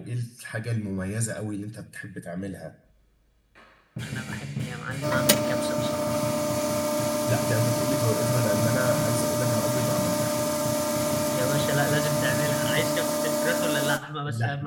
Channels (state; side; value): identical; both; correlation 1.00